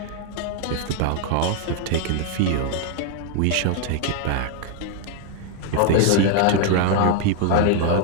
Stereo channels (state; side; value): different; both; correlation 0.01